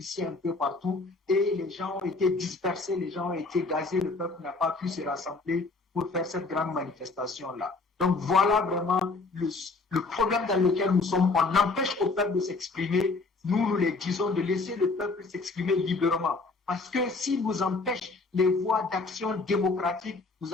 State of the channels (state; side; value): quieter; right; 3.8 dB